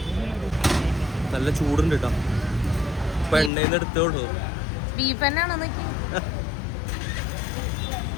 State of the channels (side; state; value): right; drops out; at 3.5 s